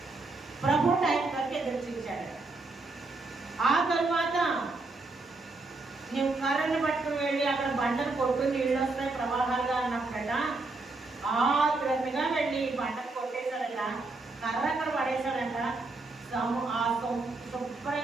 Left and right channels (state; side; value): quieter; left; 3.4 dB